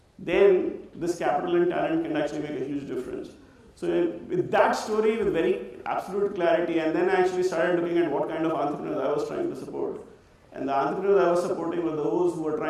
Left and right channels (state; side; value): identical; both; correlation 1.00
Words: then this capital and talent can actually make a huge difference. So with that story, with very absolute clarity, and then I actually started looking at what kind of entrepreneurs I was trying to support. And the entrepreneurs I was supporting were those who were